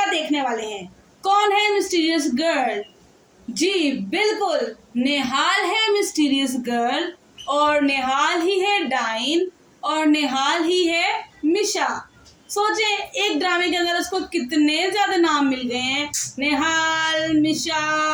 देखने वाले हैं? कौन है मिस्टीरियस गर्ल? जी बिल्कुल, नेहाल है मिस्टीरियस गर्ल, और नेहाल ही है डाइन, और नेहाल ही है मिशा। सोचे एक ड्रामे के अंदर उसको कितने ज्यादा नाम मिल गए हैं, नेहाल,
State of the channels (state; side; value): identical; both; correlation 1.00